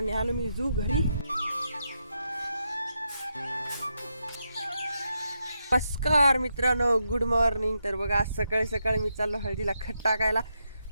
मी जू घरी. नमस्कार मित्रांनो, गुड मॉर्निंग. तर बघा आज सकाळी सकाळी मी चाललो हळदीला खत टाकायला.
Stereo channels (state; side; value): inverted; both; correlation -0.84